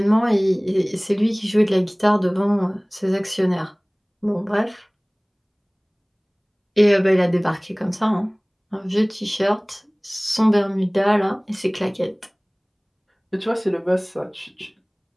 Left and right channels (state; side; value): identical; both; correlation 1.00